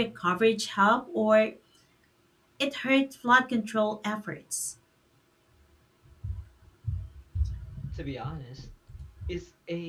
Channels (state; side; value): identical; both; correlation 1.00